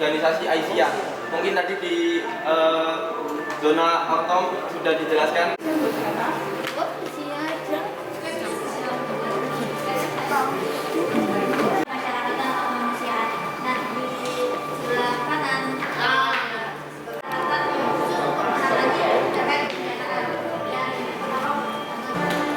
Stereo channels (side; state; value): both; identical; correlation 1.00